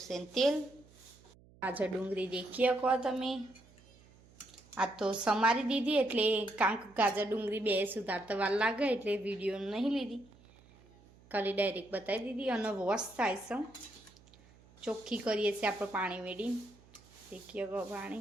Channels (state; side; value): noise; right; hum, 26 dB below the sound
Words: તેલ, ગાજર ડુંગળી દેખી શકો તમે. આ તો સમારી દીધી એટલે કાંક ગાજર ડુંગળી બે સુધારતા વાર લાગે એટલે વિડીયો નહીં લીધી, ખાલી ડાયરેક્ટ બતાવી દીધી. અને વોશ થાય છે, ચોખ્ખી કરીએ છીએ આપણે પાણી મેળી. દેખીએ શકો